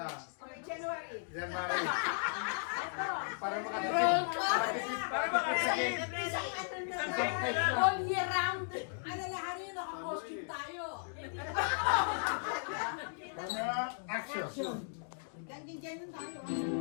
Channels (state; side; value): silent; right; digital silence